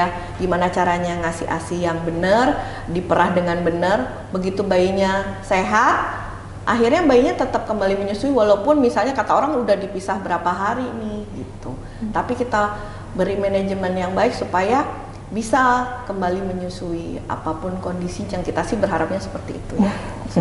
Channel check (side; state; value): both; identical; correlation 1.00